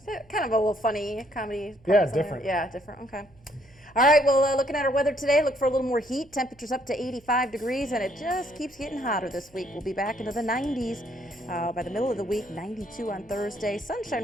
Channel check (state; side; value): noise; right; hum, 29 dB below the sound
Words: Kind of a little funny comedy. Yeah, parts in there. different. Yeah, different. Okay. All right, well, looking at our weather today, look for a little more heat. Temperatures up to 85 degrees, and it just keeps getting hotter this week. We'll be back into the 90s by the middle of the week, 92 on Thursday. Sunshine